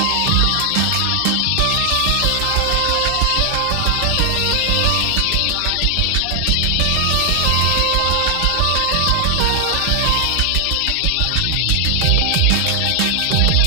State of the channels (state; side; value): different; both; correlation 0.00